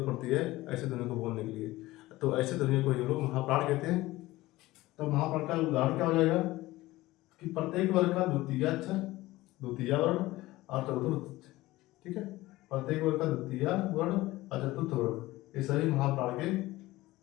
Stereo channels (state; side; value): quieter; right; 18.3 dB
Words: पड़ती है ऐसे ध्वनि को बोलने के लिए, तो ऐसे ध्वनि को ये लोग महाप्राण कहते हैं। तो महाप्राण का उदाहरण क्या हो जाएगा कि प्रत्येक वर्ग का द्वितीय अक्षर, द्वितीय वर्ण और चतुर्थ, ठीक है, प्रत्येक वर्ग का द्वितीय वर्ण और चतुर्थ वर्ण ये सभी महाप्राण के